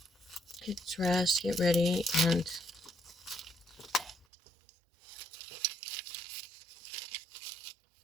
get dressed, get ready, and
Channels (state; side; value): drops out; left; at 4.2 s